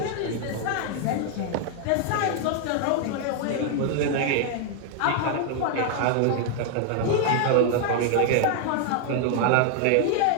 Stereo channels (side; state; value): both; different; correlation 0.00